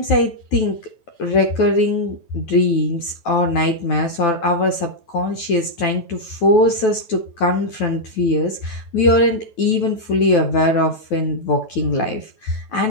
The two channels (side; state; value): right; late; 9.2 ms